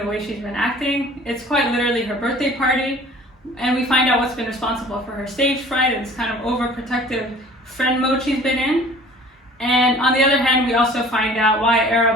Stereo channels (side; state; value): both; normal; correlation 0.48